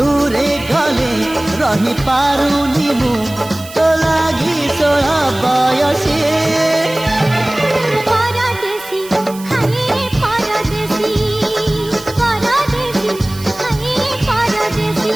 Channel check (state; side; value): noise; right; hiss, 17 dB below the sound